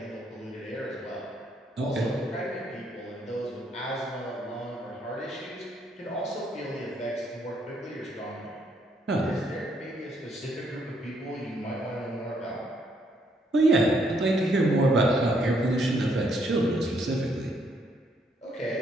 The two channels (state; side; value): normal; both; correlation 0.71